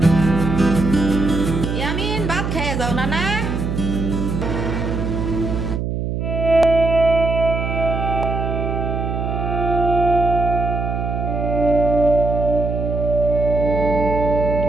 ইয়ামিন ভাত খেয়ে যাও না না।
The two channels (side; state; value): right; noise; hum, 2 dB below the sound